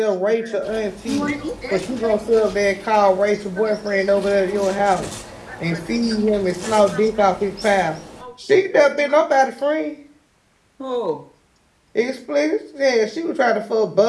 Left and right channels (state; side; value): identical; both; correlation 1.00